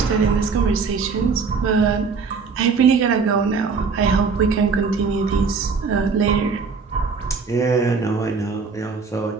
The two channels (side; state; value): left; quieter; 5.0 dB